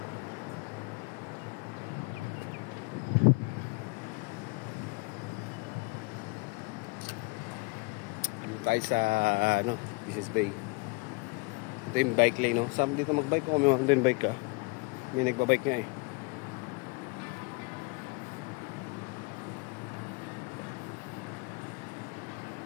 Tayo sa Business Bay. Ito yung bike lane, no? Saan dito magbike ko? Kung may mountain bike ka. May nagbabike nga eh.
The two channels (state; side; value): quieter; right; 28.7 dB